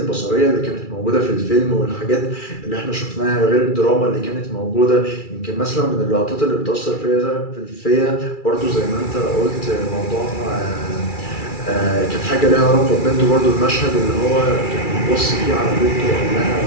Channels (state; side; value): late; right; 2.3 ms